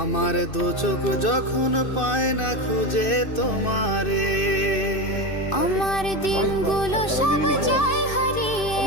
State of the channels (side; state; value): right; late; 2.6 ms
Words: দু চোখ যখন পায় না খুঁজে তোমারে। আমার দিনগুলো সব যায় হারিয়ে